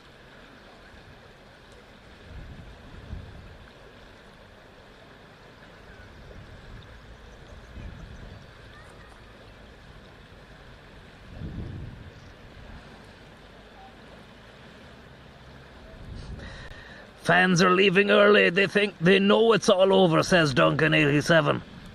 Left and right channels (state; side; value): identical; both; correlation 1.00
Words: Fans are leaving early. They know it's all over, says Duncan 87.